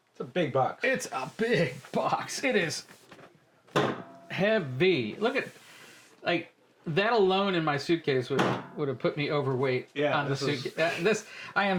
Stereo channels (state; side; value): identical; both; correlation 1.00